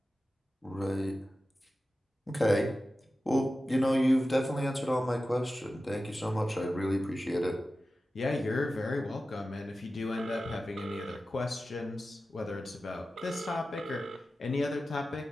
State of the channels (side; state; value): both; normal; correlation 0.94